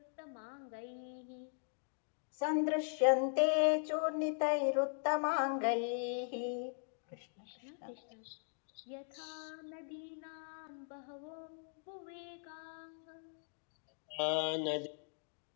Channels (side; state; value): right; silent; digital silence